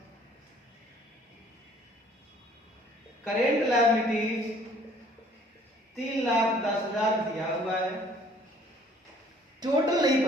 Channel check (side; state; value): both; normal; correlation 0.57